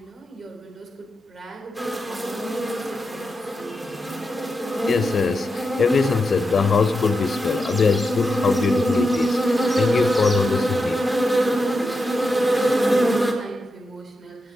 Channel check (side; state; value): both; normal; correlation 0.87